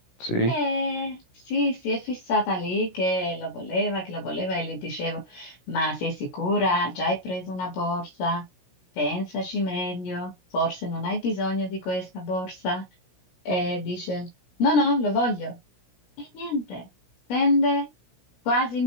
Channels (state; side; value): late; right; 16 ms